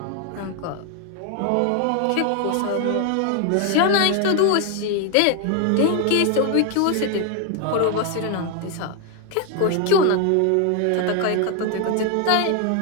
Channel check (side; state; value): both; different; correlation 0.01